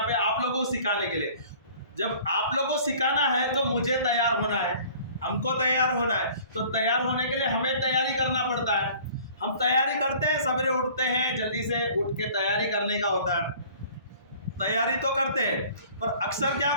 पे आप लोगों को सिखाने के लिए। जब आप लोगों को सिखाना है तो मुझे तैयार होना है, हमको तैयार होना है। तो तैयार होने के लिए हमें तैयारी करना पड़ता है। हम तैयारी करते हैं, सवेरे उठते हैं, जल्दी से उठ के तैयारी करने का होता है। तैयारी तो करते हैं, पर अक्सर क्या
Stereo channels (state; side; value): inverted; both; correlation -0.49